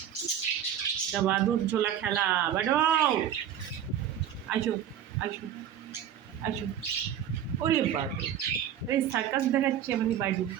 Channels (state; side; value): quieter; left; 9.8 dB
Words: এটা বাদুর ঝোলা খেলা। বাডু আসো আসো আসো। ওরে বাবু, এই সার্কাস দেখাচ্ছে আমাদের বাডু,